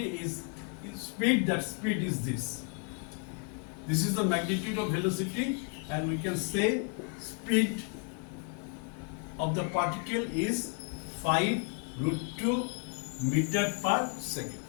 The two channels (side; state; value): right; quieter; 38.9 dB